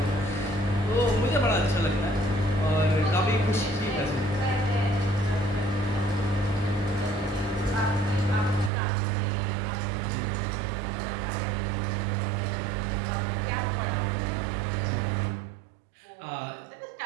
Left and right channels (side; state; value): left; drops out; at 8.7 s